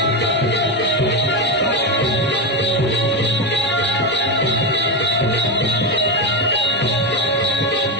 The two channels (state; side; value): normal; both; correlation 0.11